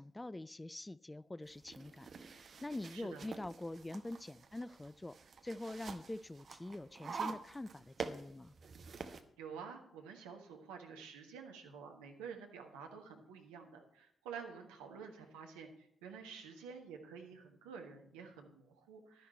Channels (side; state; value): both; normal; correlation 0.84